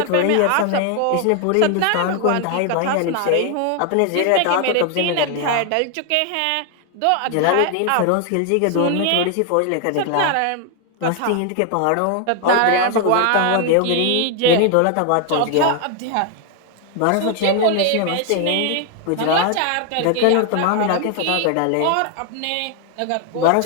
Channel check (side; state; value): both; different; correlation 0.00